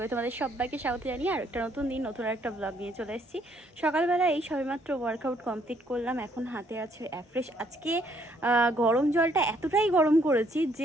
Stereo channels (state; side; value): normal; both; correlation 0.68